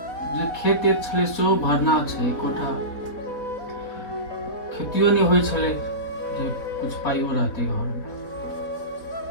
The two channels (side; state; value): right; late; 4.0 ms